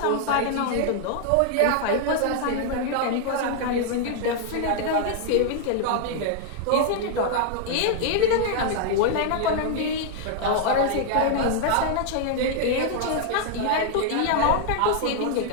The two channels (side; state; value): both; different; correlation 0.00